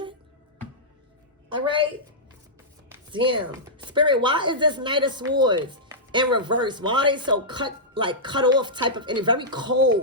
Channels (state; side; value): normal; both; correlation -0.12